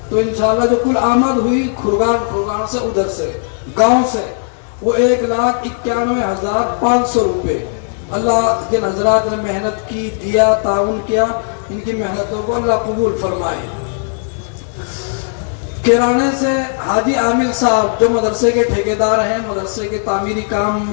तो इंशाल्लाह जो कुल आमद हुई खुरगान से, उधर से गांव से, वो 1,91,500 रुपए। अल्लाह जिन हजरात ने मेहनत की, दिया, ताउन किया, इनकी मेहनतों को अल्लाह कबूल फरमाए। किराने से हाजी आमिर साहब जो मदरसे के ठेकेदार हैं, मदरसे के तामीरी काम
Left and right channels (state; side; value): silent; right; digital silence